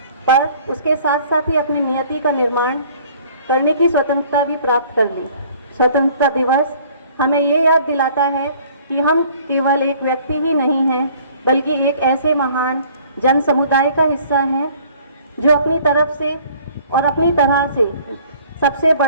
पर उसके साथ साथ ही अपनी नियति का निर्माण करने की स्वतंत्रता भी प्राप्त कर ली। स्वतंत्रता दिवस हमें ये याद दिलाता है कि हम केवल एक व्यक्ति ही नहीं हैं, बल्कि एक ऐसे महान जन समुदाय का हिस्सा हैं जो अपनी तरफ से और अपनी तरह से सबसे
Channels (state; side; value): inverted; both; correlation -0.54